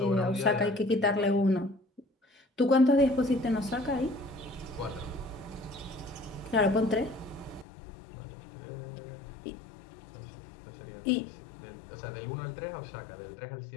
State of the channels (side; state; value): right; drops out; at 7.7 s